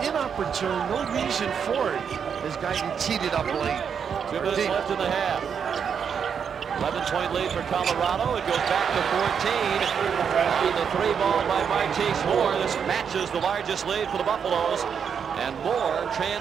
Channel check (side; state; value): left; quieter; 7.1 dB